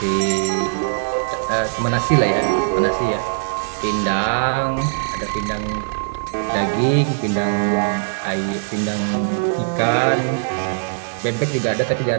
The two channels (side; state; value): left; silent; digital silence